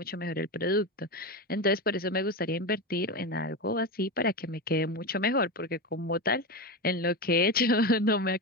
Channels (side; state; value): both; normal; correlation 0.18